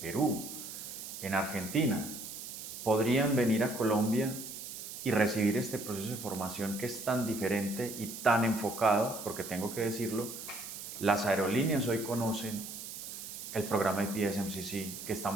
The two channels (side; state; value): right; noise; hiss, 9 dB below the sound